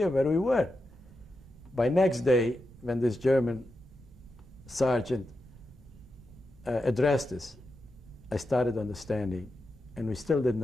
where we were. By next day, when this German sergeant addressed us, I started understanding, and we still didn't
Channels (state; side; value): normal; both; correlation 0.88